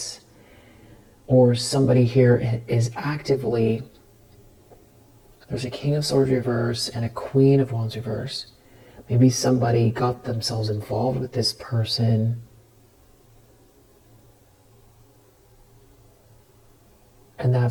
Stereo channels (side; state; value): both; identical; correlation 1.00